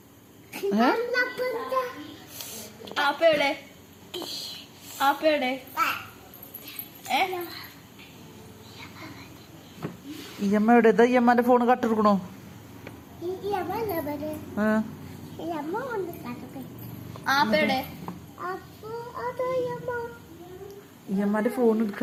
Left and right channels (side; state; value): both; identical; correlation 1.00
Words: ഇയമ്മ എവിടെ? ഇതാ ഇയമ്മന്റെ ഫോണ് കട്ടെടുക്കണോ? ഇയമ്മന്റെ ഫോൺ